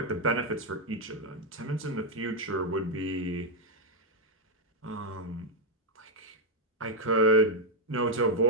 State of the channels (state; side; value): normal; both; correlation 0.00